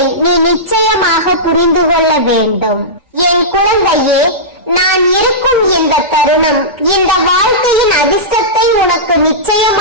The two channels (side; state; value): both; normal; correlation -0.16